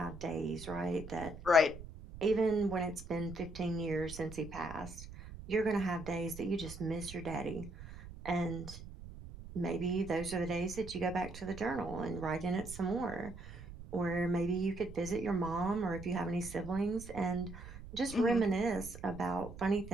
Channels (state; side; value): noise; right; rumble, 13 dB below the sound